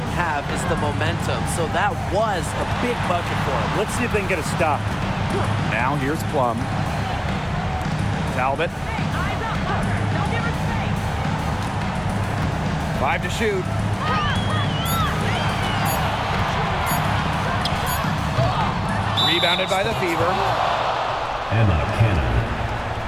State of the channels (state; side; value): identical; both; correlation 1.00